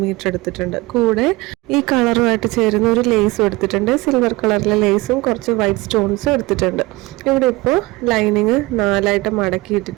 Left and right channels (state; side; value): quieter; left; 21.7 dB